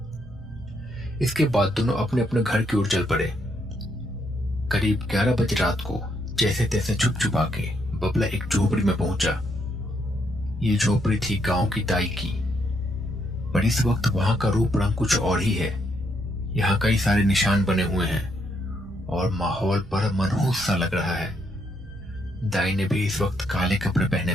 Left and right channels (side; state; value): both; normal; correlation 0.75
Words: इसके बाद दोनों अपने अपने घर की ओर चल पड़े। करीब 11 बजे रात को जैसे तैसे छुप छुपा के बबला एक झोपड़ी में पहुंचा। ये झोपड़ी थी गांव की दाई की, पर इस वक्त वहां का रूप रंग कुछ और ही है। यहाँ कई सारे निशान बने हुए हैं और माहौल पर मनहूस सा लग रहा है। दाई ने भी इस वक्त काले कपड़े पहने